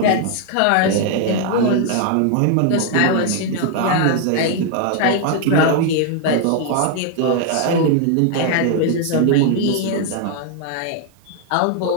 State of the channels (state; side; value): different; both; correlation 0.00